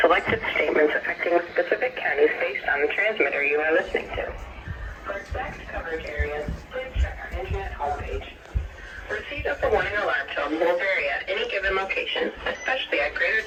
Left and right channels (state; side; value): identical; both; correlation 1.00